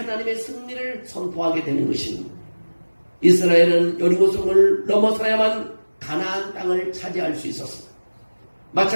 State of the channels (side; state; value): both; inverted; correlation -1.00